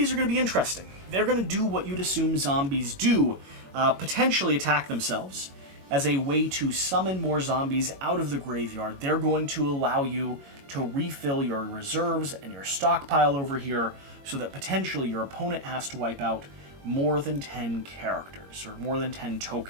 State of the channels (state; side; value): late; left; 22 ms